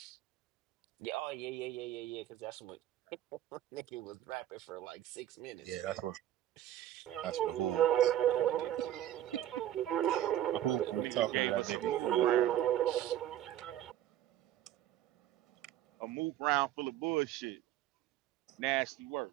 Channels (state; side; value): quieter; left; 12.3 dB